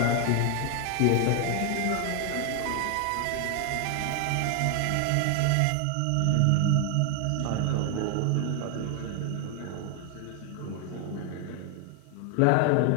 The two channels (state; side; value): different; both; correlation 0.01